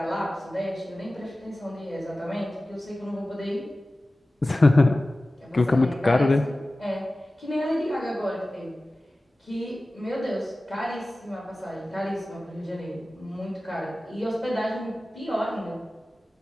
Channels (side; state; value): both; normal; correlation 0.96